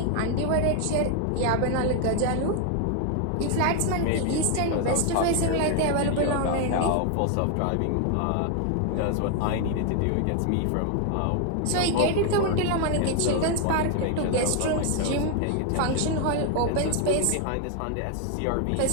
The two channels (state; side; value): different; both; correlation 0.01